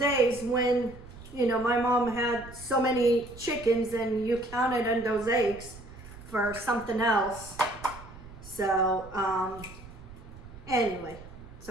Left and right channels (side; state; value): right; noise; rumble, 17 dB below the sound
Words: when, my mom had so many chickens and you counted on those eggs for something else. So, anyway,